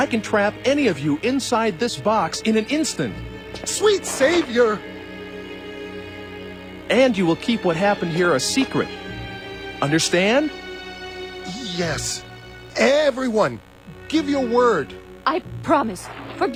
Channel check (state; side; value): identical; both; correlation 1.00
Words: can trap any of you inside this box in an instant. Sweet Savior! And you will keep what happened here a secret. Understand? Yes. Everyone, give your word. I promise.